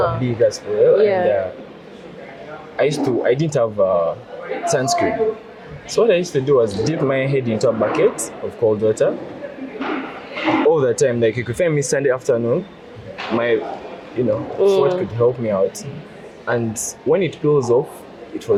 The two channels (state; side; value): identical; both; correlation 1.00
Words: a bigger swell. Yeah. And I didn't have sunscreen. So what I used to do was dip my head into a bucket of cold water all the time. Like you could find me Sunday afternoon, my, you know, sweat could help me out. And when it peels off, it